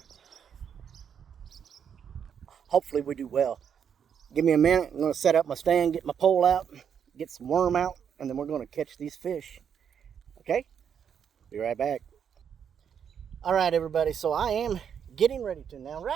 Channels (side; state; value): left; quieter; 7.9 dB